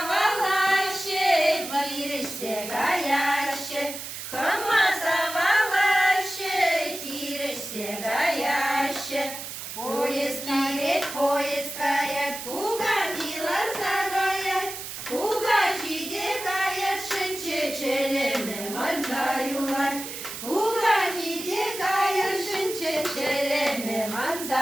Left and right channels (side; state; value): right; noise; hiss, 9 dB below the sound